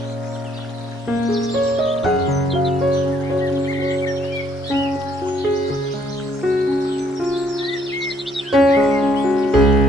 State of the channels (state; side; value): normal; both; correlation 0.66